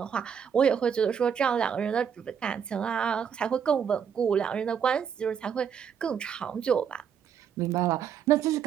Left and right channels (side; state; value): left; quieter; 7.7 dB